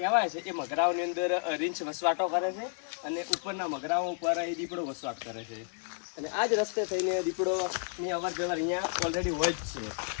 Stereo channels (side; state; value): right; silent; 57 dB below the other